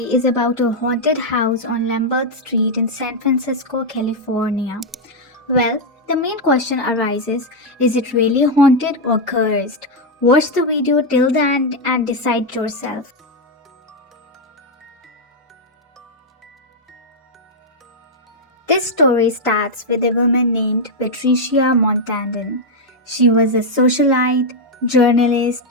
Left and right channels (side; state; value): both; normal; correlation 0.00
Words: is about a haunted house on Lombard Street in San Francisco, California. Well, the main question arises, is it really haunted or cursed? Watch the video till the end and decide yourself. This story starts with a woman named Patricia Montandon. She was a socialite, journalist,